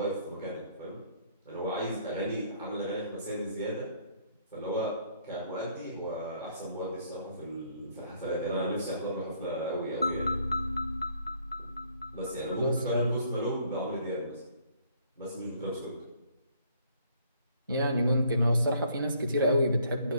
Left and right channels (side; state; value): both; inverted; correlation -0.65